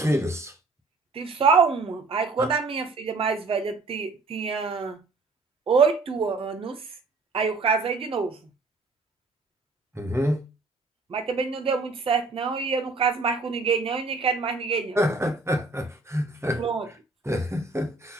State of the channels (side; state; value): left; quieter; 3.7 dB